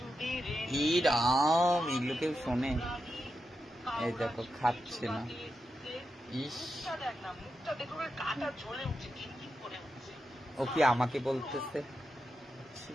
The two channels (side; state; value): both; normal; correlation 0.88